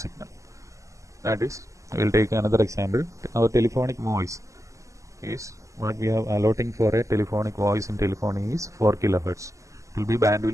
That is, we will take another example. Our telephonic voice is what we have allotting for a telephonic voice in telephony is 4 kilohertz. It will be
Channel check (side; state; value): left; late; 0.16 ms